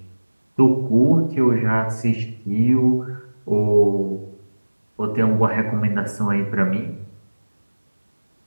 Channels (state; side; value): inverted; both; correlation -1.00